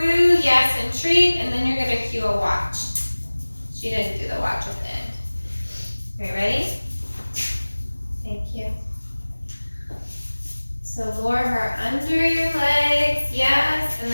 yes, and treat, and then you're gonna cue a watch. She didn't do the watch at the end. Are you ready? Thank you. So lure her under your legs, yes, and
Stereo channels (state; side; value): inverted; both; correlation -1.00